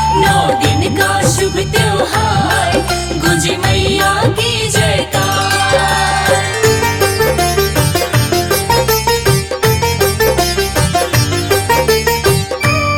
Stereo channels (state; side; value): identical; both; correlation 1.00